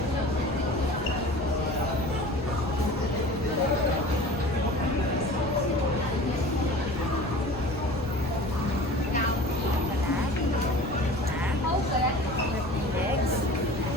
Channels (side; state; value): both; normal; correlation 0.40